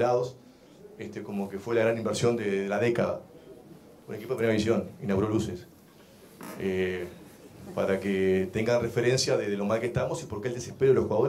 como que fue la gran inversión de la década. Un equipo de primera división inauguró luces. Para que tengan referencia de lo mal que estamos y por qué el desespero de los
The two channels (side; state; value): both; identical; correlation 1.00